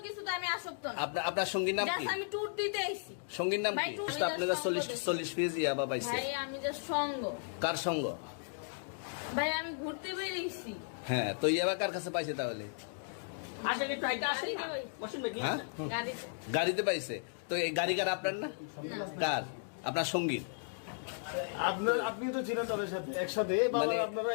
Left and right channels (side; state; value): right; silent; digital silence